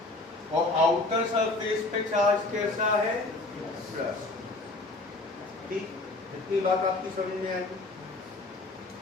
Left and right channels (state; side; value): quieter; right; 3.1 dB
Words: और आउटर सरफेस पे चार्ज कैसा है? प्लस। ठीक, इतनी बात आपकी समझ में आएगी।